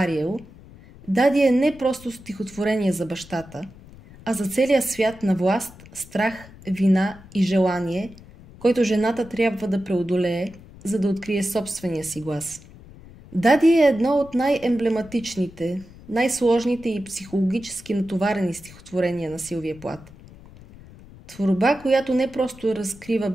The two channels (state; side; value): noise; left; rumble, 20 dB below the sound